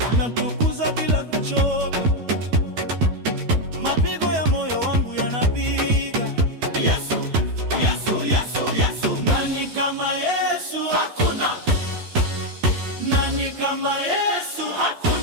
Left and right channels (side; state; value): left; late; 12 ms